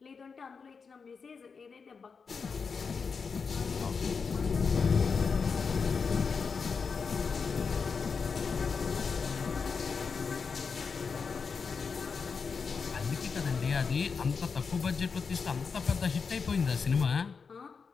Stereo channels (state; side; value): quieter; right; 5.4 dB